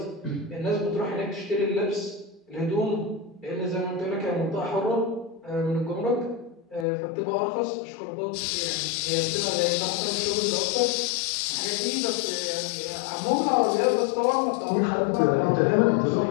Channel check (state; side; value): drops out; right; at 6.9 s